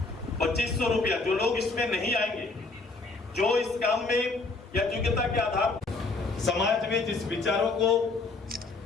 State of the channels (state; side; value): quieter; right; 3.6 dB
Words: 2500 रुपया, जो लोग इसमें नहीं आएंगे, जो इस काम में या योग्यता के आधार समाज में जिस विचारों को